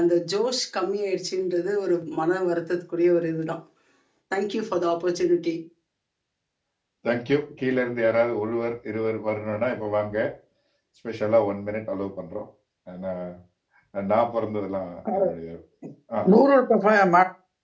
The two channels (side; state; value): both; identical; correlation 1.00